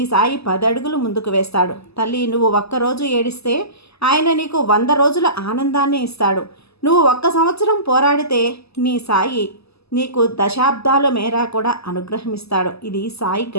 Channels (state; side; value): late; right; 0.79 ms